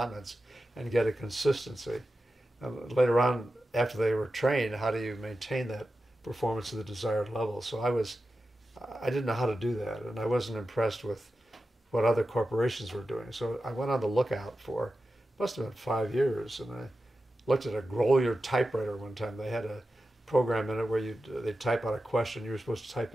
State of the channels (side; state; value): both; normal; correlation 0.92